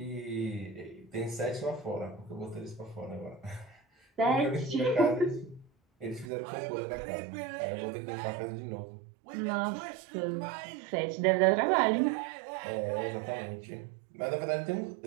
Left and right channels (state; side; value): drops out; left; at 6.3 s